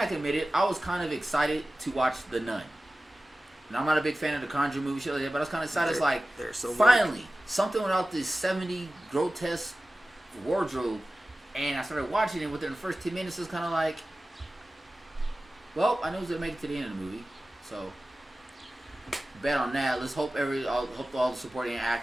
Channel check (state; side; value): normal; both; correlation 0.96